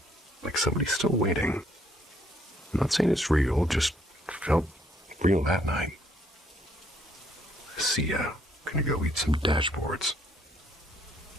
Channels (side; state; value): both; normal; correlation 0.68